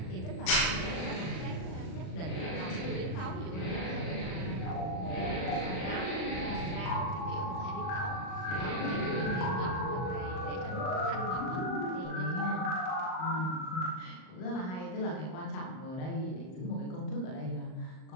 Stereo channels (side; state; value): right; late; 38 ms